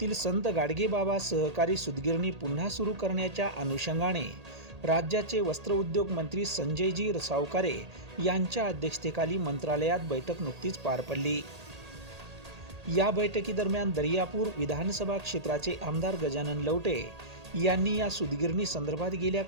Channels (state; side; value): late; left; 1.8 ms